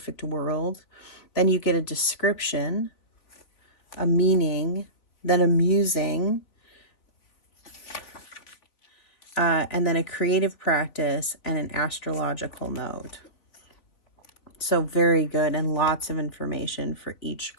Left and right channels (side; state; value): right; late; 3.6 ms